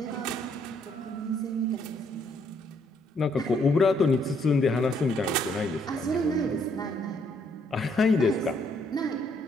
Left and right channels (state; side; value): normal; both; correlation 0.70